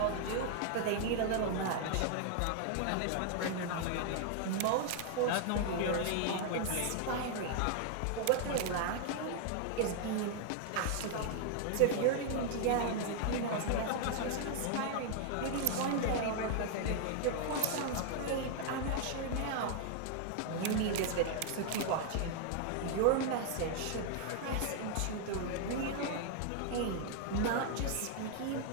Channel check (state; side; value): different; both; correlation 0.00